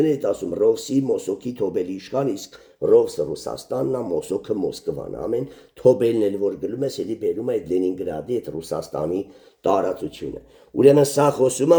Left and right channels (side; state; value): both; identical; correlation 1.00